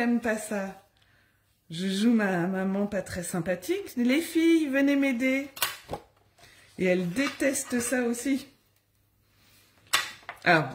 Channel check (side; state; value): both; identical; correlation 1.00